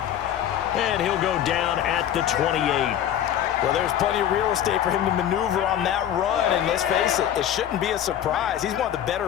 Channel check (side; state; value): right; quieter; 10.6 dB